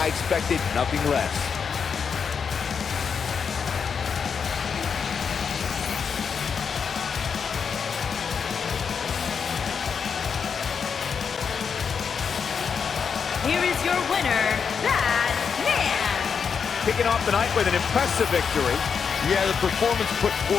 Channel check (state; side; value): quieter; right; 6.4 dB